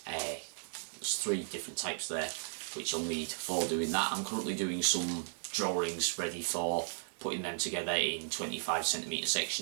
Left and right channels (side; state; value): left; silent; digital silence